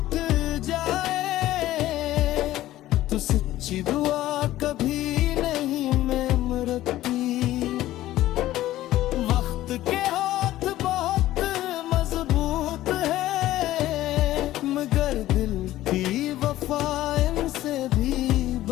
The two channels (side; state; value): right; quieter; 14.8 dB